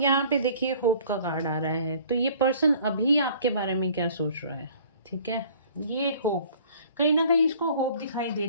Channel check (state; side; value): inverted; both; correlation -0.52